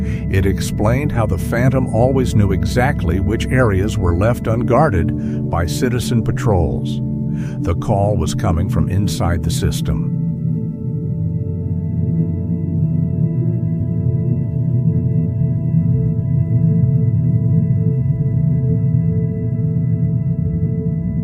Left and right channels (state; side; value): identical; both; correlation 1.00